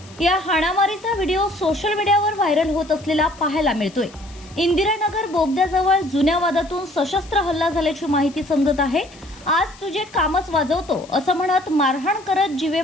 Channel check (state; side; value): noise; left; hiss, 23 dB below the sound